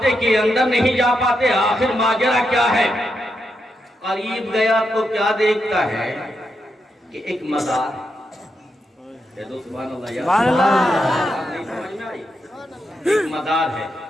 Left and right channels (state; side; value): normal; both; correlation 0.84